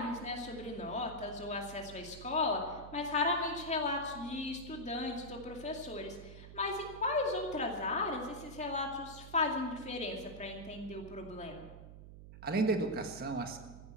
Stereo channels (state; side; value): noise; right; hum, 14 dB below the sound